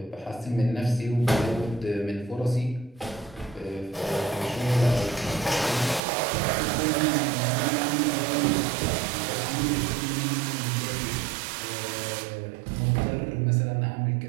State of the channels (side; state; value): left; drops out; at 6.0 s